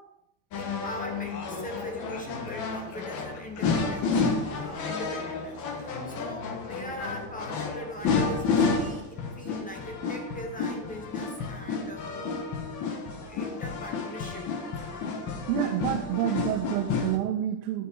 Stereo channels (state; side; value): normal; both; correlation 0.05